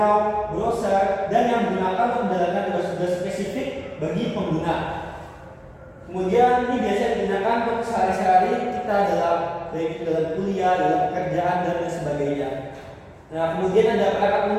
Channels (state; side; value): identical; both; correlation 1.00